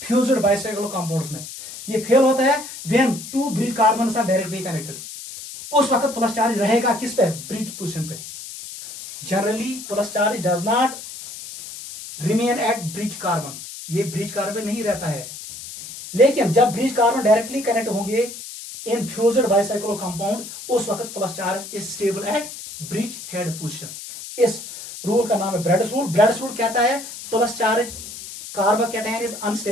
फ्यूज्ड बाइसाइक्लो कंपाउंड्स में। ये फेल होता है when 2 bridge carbon are directly connected, उस वक्त प्लस चार्ज रहेगा किस पे, ब्रिज पोजीशन पे। Generally plus charge does not remain at bridge carbon, ये ब्रिज कार्बन नहीं रहता है। लेकिन जब ब्रिज कार्बन डायरेक्टली कनेक्ट होंगे इन फ्यूज्ड बाइसाइक्लो कंपाउंड, उस वक्त plus charge is stable at bridge head position. इस रूल का नाम है ब्रेड्स रूल। ब्रेड्स रूल कहता है plus charge carbocation is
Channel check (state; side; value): noise; left; hiss, 12 dB below the sound